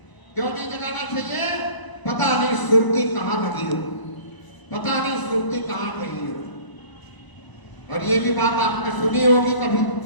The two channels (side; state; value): right; late; 1.0 ms